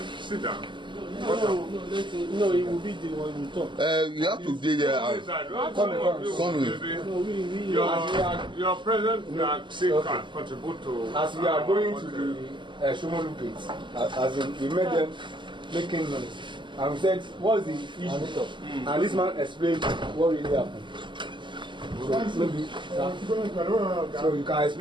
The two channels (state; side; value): late; left; 0.23 ms